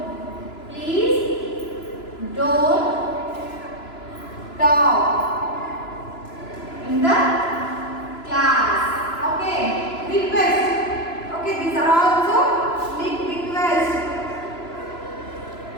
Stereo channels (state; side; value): late; right; 3.0 ms